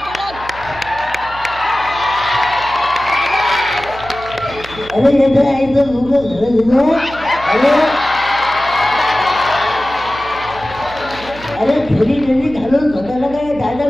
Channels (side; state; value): right; noise; hum, 17 dB below the sound